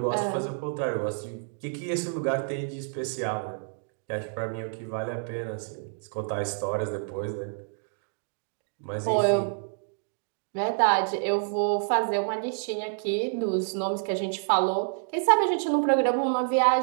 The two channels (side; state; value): left; silent; 59 dB below the other